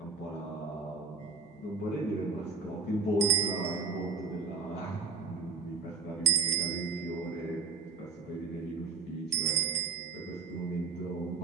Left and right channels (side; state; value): left; quieter; 4.8 dB